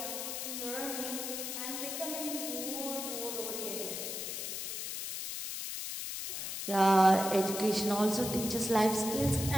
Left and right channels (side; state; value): left; noise; hiss, 4 dB below the sound